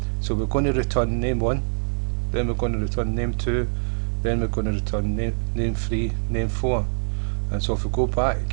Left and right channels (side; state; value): left; silent; digital silence